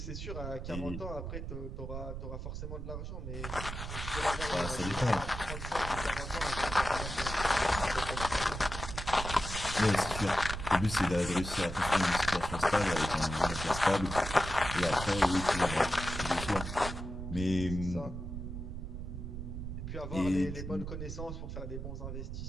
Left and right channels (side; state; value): right; noise; rumble, 6 dB below the sound